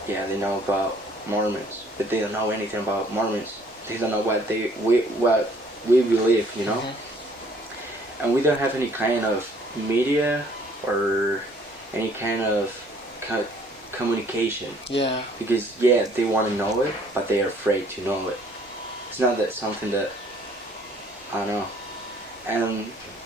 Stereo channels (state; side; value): normal; both; correlation 0.59